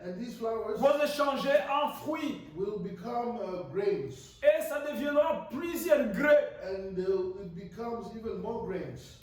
and these flowers vont se changer en fruits. will become grains, Et ça deviendra plusieurs grains and it becomes even more grains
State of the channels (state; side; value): identical; both; correlation 1.00